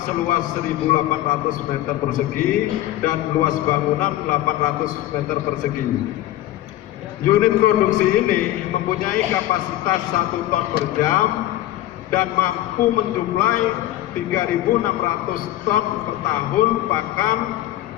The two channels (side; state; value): right; quieter; 14.5 dB